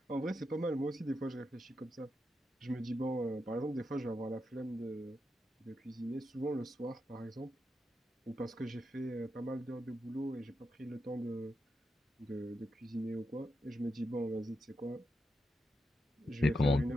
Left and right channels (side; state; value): both; normal; correlation 0.86